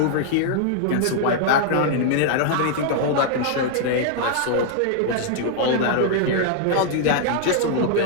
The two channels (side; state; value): both; different; correlation 0.00